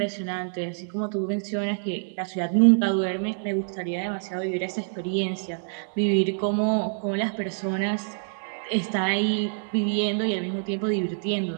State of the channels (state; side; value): silent; left; 60 dB below the other